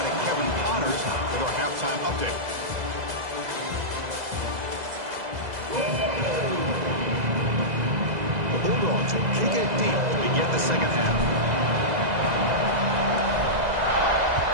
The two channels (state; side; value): late; left; 2.0 ms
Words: to Kevin Connors with our halftime update. The Bulldogs will kick it deep to begin the second half.